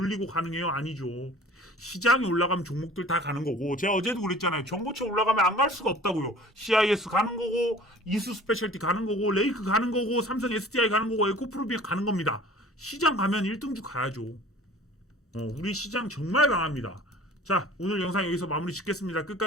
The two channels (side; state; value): both; normal; correlation 0.46